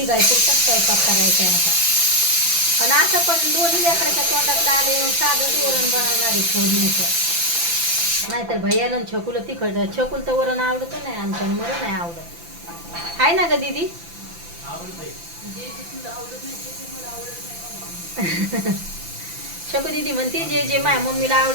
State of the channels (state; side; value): late; left; 5.9 ms